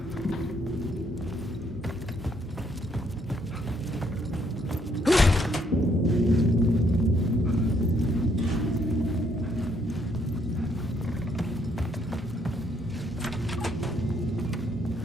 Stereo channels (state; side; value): normal; both; correlation 0.70